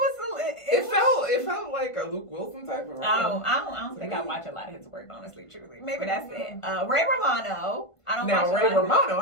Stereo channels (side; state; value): right; late; 1.5 ms